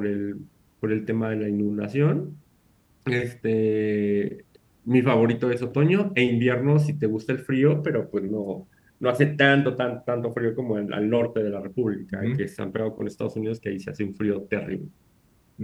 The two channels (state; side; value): identical; both; correlation 1.00